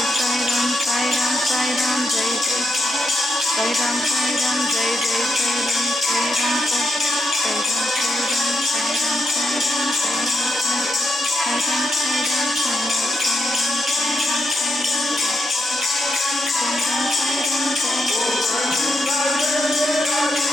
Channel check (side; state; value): both; normal; correlation 0.81